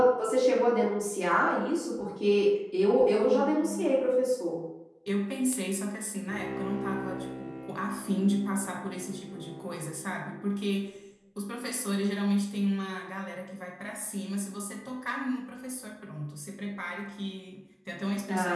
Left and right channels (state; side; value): identical; both; correlation 1.00